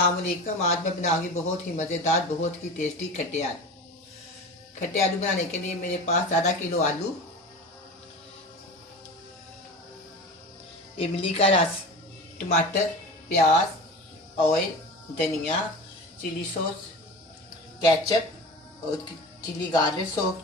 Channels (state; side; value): normal; both; correlation 0.32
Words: वालेकुम। आज मैं बनाऊंगी बहुत ही मज़ेदार, बहुत ही टेस्टी खट्टे आलू। खट्टे आलू बनाने के लिए मेरे पास आधा किलो आलू, इमली का रस, टमाटर, प्याज, ऑयल, धनिया, चिली सॉस, केचप और चिली गार्लिक सॉस,